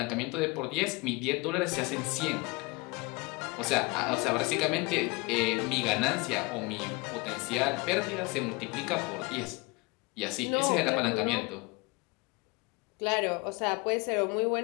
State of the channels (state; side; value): quieter; right; 26.3 dB